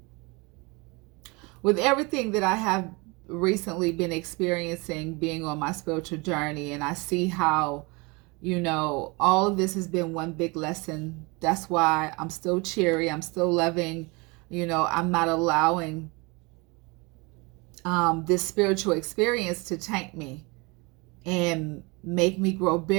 with everything that I have recently been experiencing, being on my spiritual journey, and I see how, all of this has been one big lesson. That's why I'm still cheery. I'm still loving. I'm not allowing this spiritual experience to taint me and make me grow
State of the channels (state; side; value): quieter; left; 27.4 dB